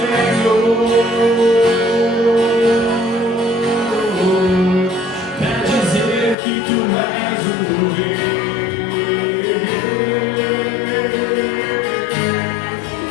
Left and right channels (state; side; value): drops out; right; at 6.4 s